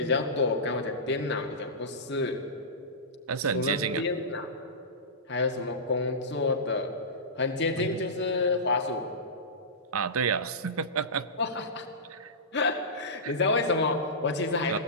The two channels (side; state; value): both; normal; correlation -0.19